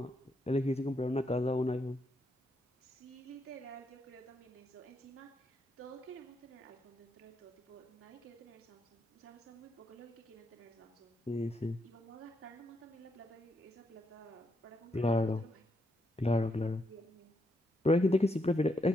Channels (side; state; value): both; normal; correlation 0.79